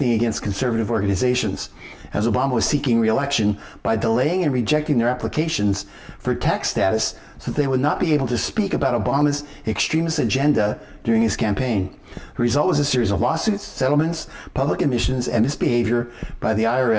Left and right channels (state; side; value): identical; both; correlation 1.00